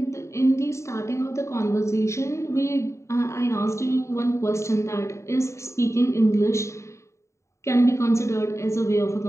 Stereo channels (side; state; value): right; late; 0.14 ms